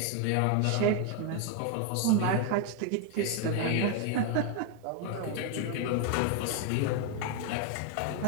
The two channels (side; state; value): both; different; correlation 0.01